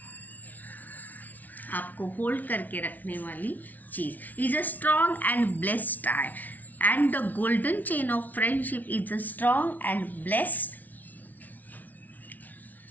आपको होल्ड करके रखने वाली चीज, is a strong and blessed tie. And the golden chain of friendship is a strong and blessed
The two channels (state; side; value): late; right; 0.077 ms